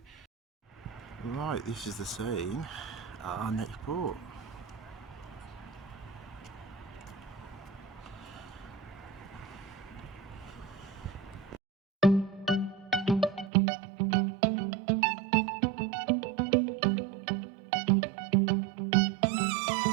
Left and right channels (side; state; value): left; drops out; at 13.5 s